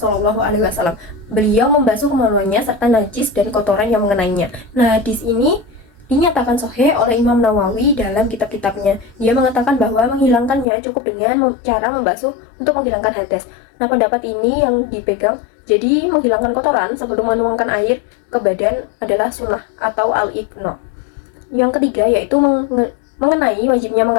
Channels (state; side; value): drops out; right; at 10.7 s